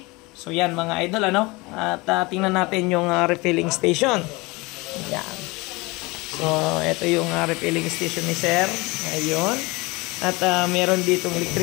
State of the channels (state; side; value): quieter; right; 24.2 dB